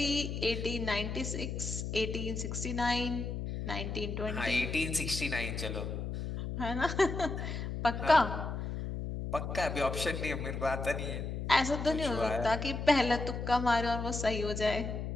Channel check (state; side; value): noise; left; hum, 4 dB below the sound